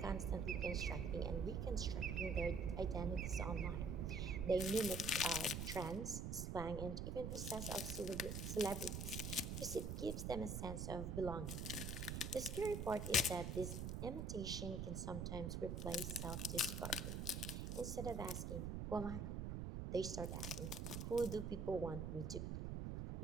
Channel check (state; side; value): noise; right; rumble, 3 dB below the sound